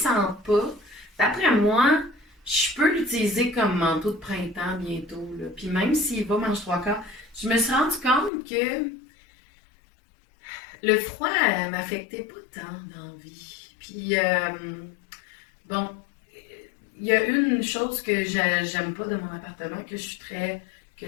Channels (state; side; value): drops out; right; at 8.3 s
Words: pas, d'après moi, je peux l'utiliser comme manteau de printemps bientôt, là. Puis même s'il va mange trois quarts, je me suis rendu compte que le froid m'affectait pas tant dans la vie. Puis, bon, il y a une chose que j'aime pas de mon appartement, que je suis très, que